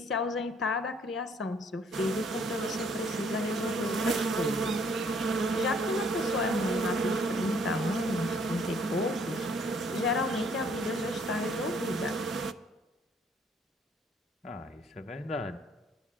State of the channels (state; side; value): normal; both; correlation 0.63